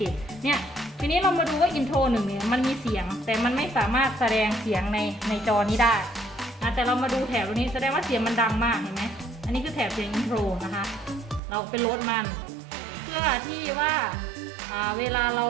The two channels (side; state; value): left; drops out; at 11.4 s